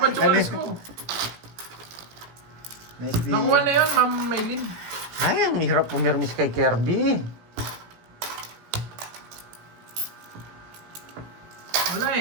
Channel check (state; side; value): late; left; 17 ms